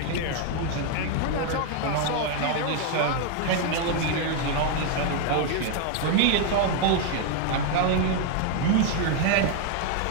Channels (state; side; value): different; both; correlation 0.00